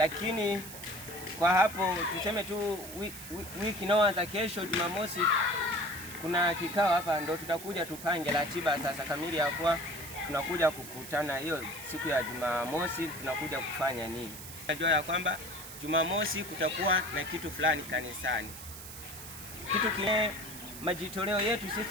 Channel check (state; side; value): noise; right; hiss, 12 dB below the sound